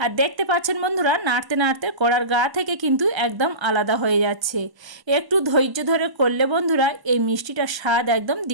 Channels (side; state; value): left; late; 1.0 ms